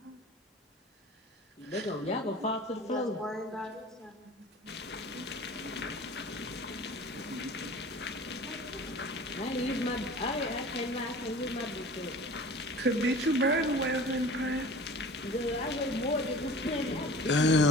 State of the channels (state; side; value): normal; both; correlation 0.41